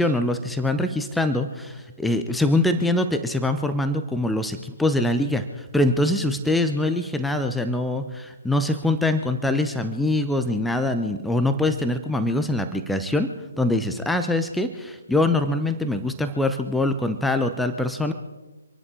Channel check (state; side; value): normal; both; correlation 0.56